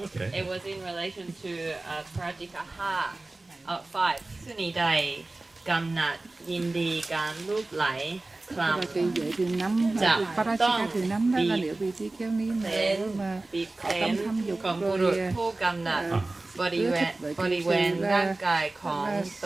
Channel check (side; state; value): left; quieter; 3.0 dB